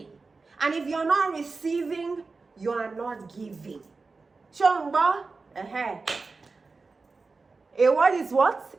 And if you're not receiving, you are not giving. Chongba? A word is what?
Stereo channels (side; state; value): left; quieter; 4.1 dB